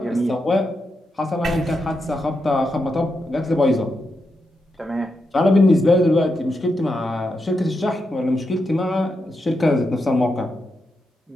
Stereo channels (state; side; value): normal; both; correlation 0.85